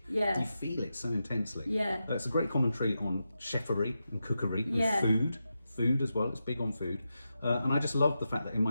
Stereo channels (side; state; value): both; inverted; correlation -0.89